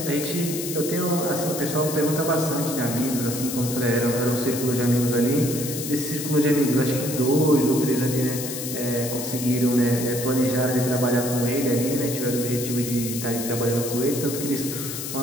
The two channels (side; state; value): left; noise; hiss, 6 dB below the sound